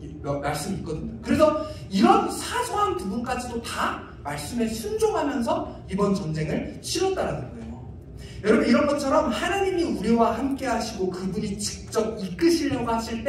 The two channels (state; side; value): identical; both; correlation 1.00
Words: 이런 말씀이 있거든요. 그래서 이런 사소한 부분까지도 다 말씀에 순종하면서 이번 전쟁을 치렀다라는 거예요. 여러분, 이런 것처럼 하나님이 우리와 함께 하시고 그분이 직접 이끄시려고 하실